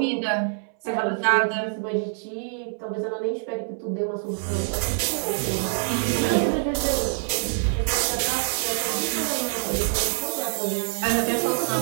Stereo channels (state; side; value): silent; left; 60 dB below the other